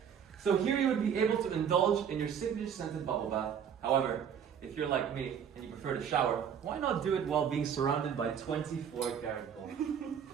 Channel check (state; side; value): quieter; left; 8.0 dB